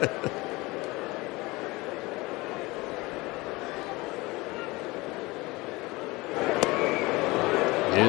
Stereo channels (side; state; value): right; quieter; 22.5 dB